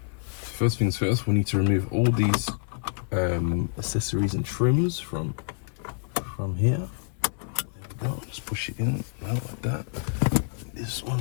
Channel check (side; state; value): right; silent; 60 dB below the other